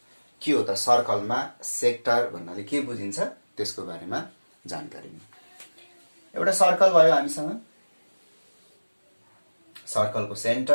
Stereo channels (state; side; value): inverted; both; correlation -1.00